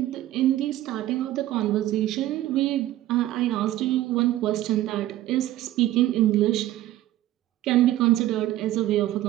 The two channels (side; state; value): left; quieter; 14.4 dB